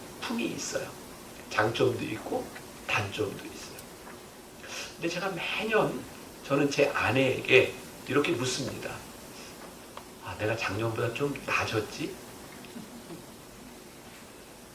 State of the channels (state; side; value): identical; both; correlation 1.00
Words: 있어요. 장점도 있고 단점도 있어요. 근데 제가 매년 저는 제 아내에게 이렇게 묻습니다. 아, 내가 작년보다 좀 나아졌지?